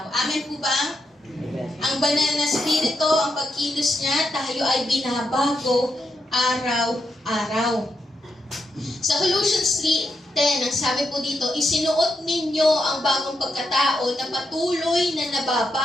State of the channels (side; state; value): both; normal; correlation 0.83